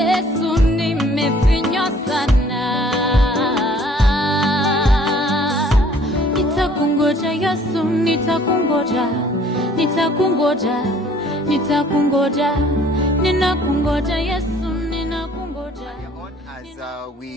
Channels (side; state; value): both; normal; correlation 0.56